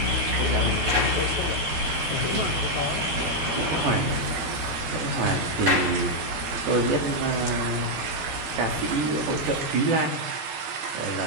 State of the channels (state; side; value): late; left; 14 ms